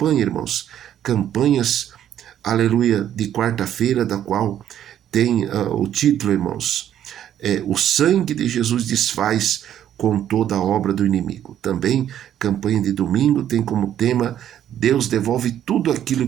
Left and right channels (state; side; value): quieter; left; 10.6 dB